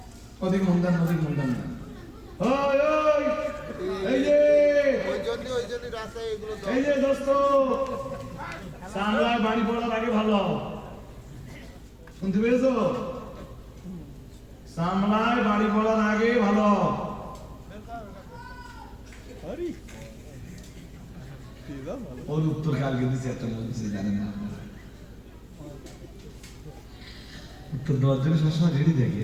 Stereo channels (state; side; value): identical; both; correlation 1.00